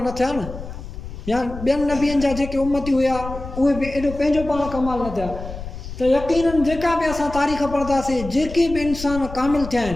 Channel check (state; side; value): noise; left; rumble, 11 dB below the sound